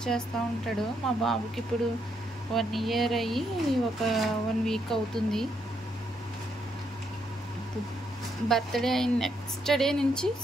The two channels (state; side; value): normal; both; correlation 0.76